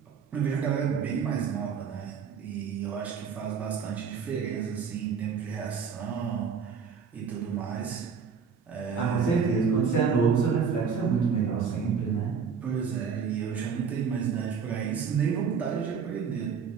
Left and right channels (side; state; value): left; quieter; 6.3 dB